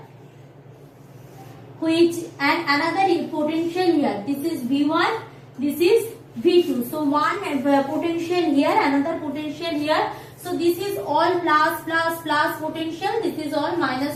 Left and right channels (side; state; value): both; identical; correlation 1.00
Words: which and another potential here. This is V1, this is V2. So one potential here, another potential here. So this is all plus potential, this is all